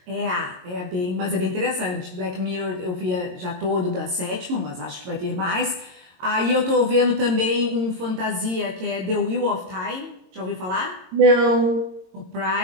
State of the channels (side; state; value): left; late; 22 ms